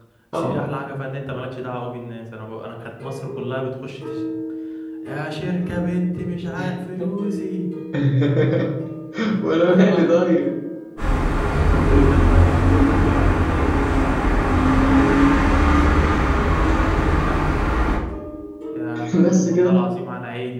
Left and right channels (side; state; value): both; identical; correlation 1.00